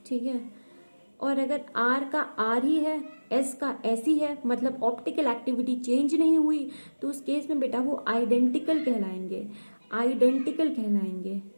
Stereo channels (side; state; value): both; inverted; correlation -1.00